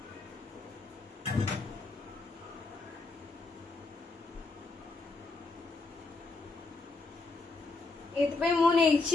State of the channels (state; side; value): quieter; right; 3.6 dB